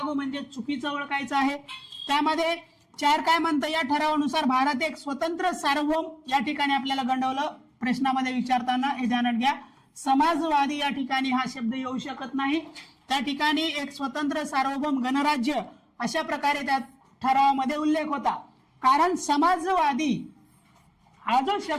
म्हणजे चुकीचं ओळखायचं आहे. त्यामध्ये 4 काय म्हणतं, या ठरावानुसार भारत एक स्वतंत्र सार्वभौम, या ठिकाणी आपल्याला गंडवलं प्रश्नामध्ये विचारताना, हे ध्यानात घ्या. समाजवादी या ठिकाणी हा शब्द येऊ शकत नाही. त्या ठिकाणी एक स्वतंत्र सार्वभौम गणराज्य अशा प्रकारे त्या ठरावामध्ये उल्लेख होता. कारण समाजवादी हा जो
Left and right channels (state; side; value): identical; both; correlation 1.00